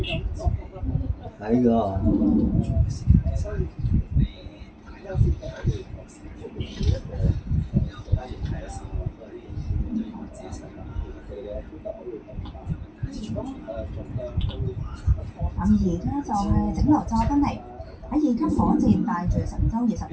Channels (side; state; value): both; identical; correlation 1.00